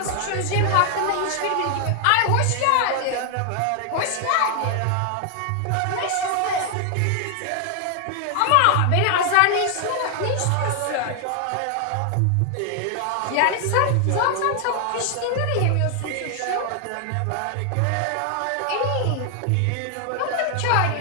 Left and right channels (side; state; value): both; different; correlation 0.00